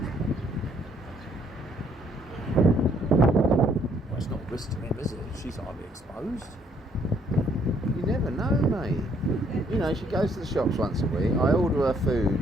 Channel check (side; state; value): both; normal; correlation 0.67